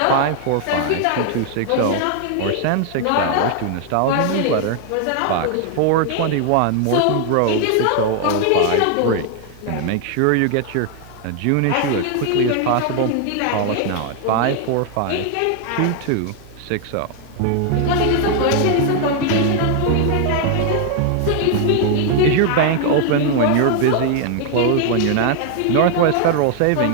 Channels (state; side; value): different; both; correlation 0.00